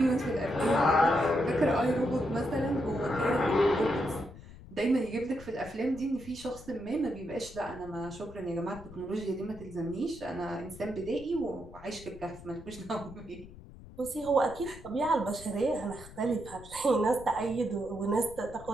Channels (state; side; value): noise; left; rumble, 17 dB below the sound